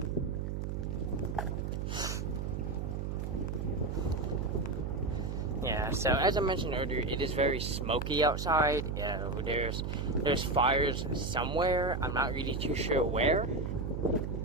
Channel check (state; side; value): noise; right; hum, 3 dB below the sound